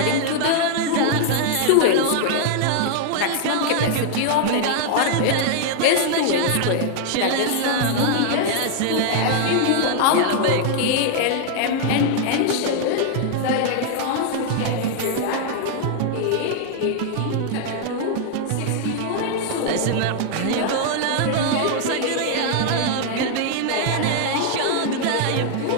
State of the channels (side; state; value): both; different; correlation 0.00